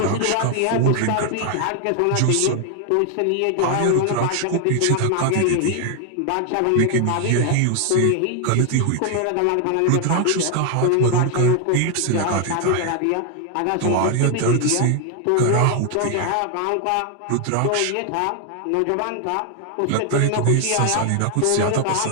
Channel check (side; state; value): both; different; correlation 0.00